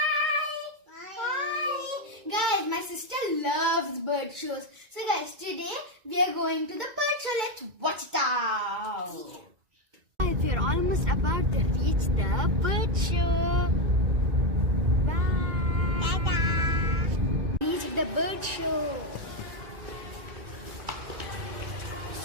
Hi! Guys, my sister loves bird shows. So guys, today we are going to the bird show. Let's watch it out. Guys, we are almost about to reach the bird show. Bye! Ta-da! Reach the bird show.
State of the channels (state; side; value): late; left; 2.2 ms